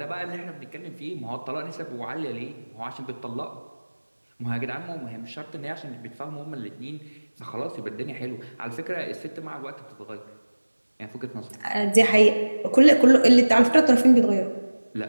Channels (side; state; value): both; inverted; correlation -1.00